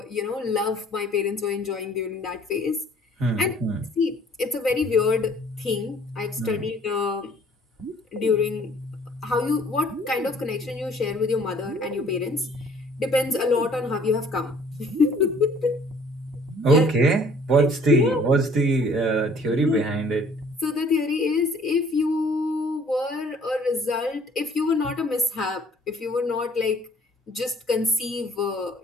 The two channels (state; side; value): normal; both; correlation 0.56